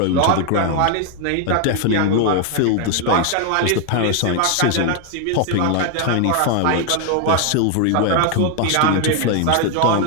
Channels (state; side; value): different; both; correlation 0.01